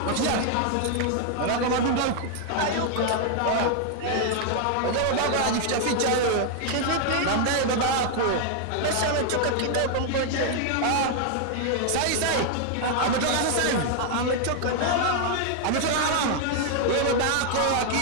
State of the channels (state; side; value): different; both; correlation 0.00